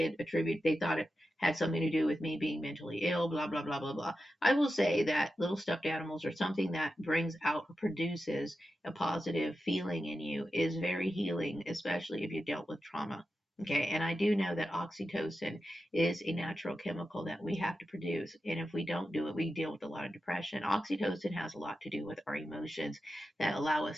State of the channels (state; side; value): normal; both; correlation 0.91